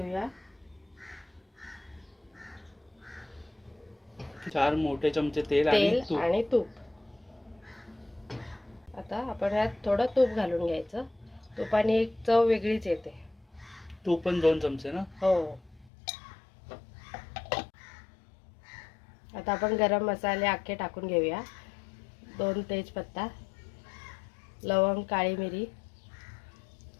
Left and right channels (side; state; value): right; drops out; at 15.9 s